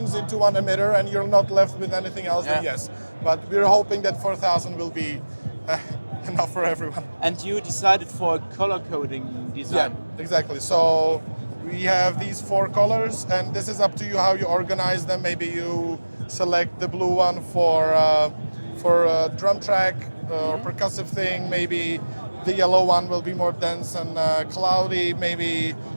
into one emitter and you're not left with anything else, then yes. But we're hoping that 4,000 will be enough for everyone. And you decided for a color coding design. Yeah, exactly. So we have these 4 colors, and this is up to you how you organize them. Maybe you select the blue one for a drum track or percussive thing. Maybe the yellow one will be more dense and cloudy. Maybe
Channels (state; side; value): inverted; both; correlation -1.00